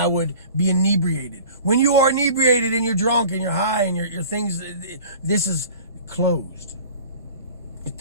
would be inebriated. When you are inebriated and you're drunk and you're high and your things, this is closed. Your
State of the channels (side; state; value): both; inverted; correlation -0.43